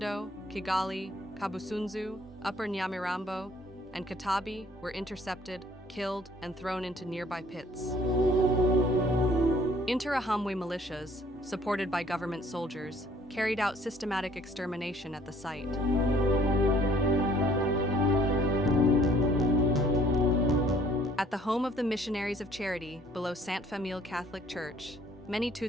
Kigali, Kabusunzu, Upper Nyamirambo, and Kitabi were intercepted, killed, and thrown into nearby pits. Interahamwe militias, supported by government soldiers, carried out systematic extermination at the site. At the home of the Missionaries of Charity, below Sainte Famille Catholic Church, many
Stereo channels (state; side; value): normal; both; correlation 0.59